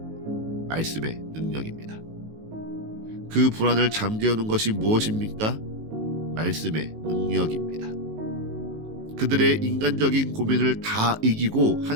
말씀의 능력입니다. 그 불안을 잠재우는 것이 무엇입니까? 말씀의 능력입니다. 그들의 인간적인 고민을 다 이기고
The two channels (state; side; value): late; left; 19 ms